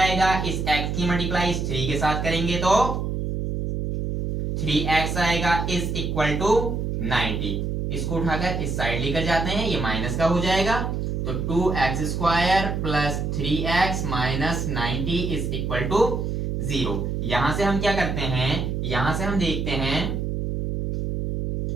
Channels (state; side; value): noise; right; hum, 2 dB below the sound